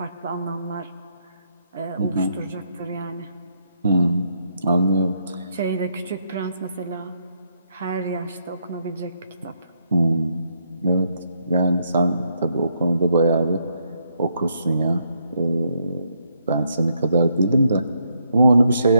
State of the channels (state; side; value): inverted; both; correlation -0.76